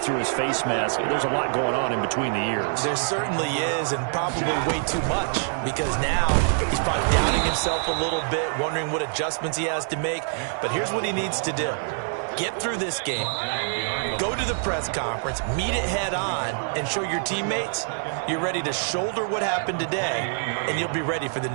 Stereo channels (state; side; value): silent; left; digital silence